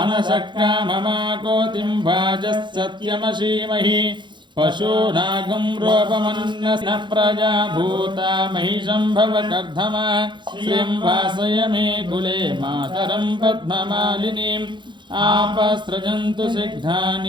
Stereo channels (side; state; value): left; late; 0.23 ms